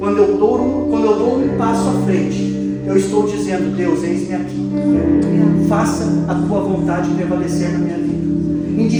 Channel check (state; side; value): identical; both; correlation 1.00